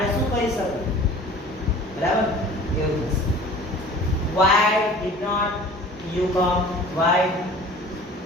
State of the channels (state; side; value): normal; both; correlation 0.45